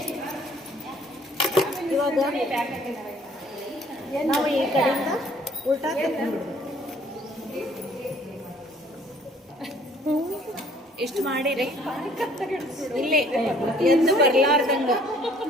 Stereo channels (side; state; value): both; normal; correlation 0.58